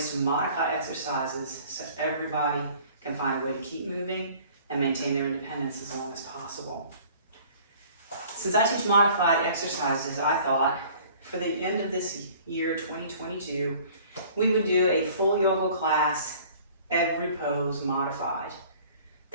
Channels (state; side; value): inverted; both; correlation -0.51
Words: to modify exercises so everybody can find a way to keep moving and maintain their independence as long as possible. Since I teach modified exercises, I thought for the end of this year, 2022, we would do a full yoga class, every pose modified.